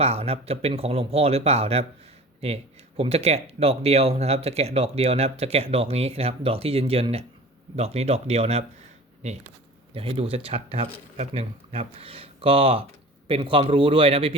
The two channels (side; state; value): both; normal; correlation 0.40